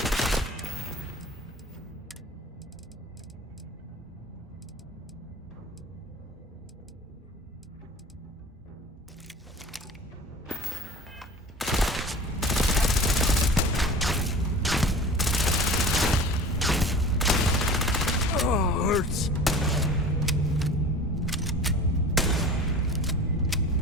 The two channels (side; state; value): both; normal; correlation 0.39